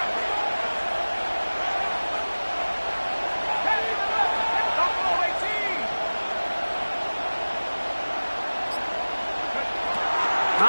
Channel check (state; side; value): inverted; both; correlation -1.00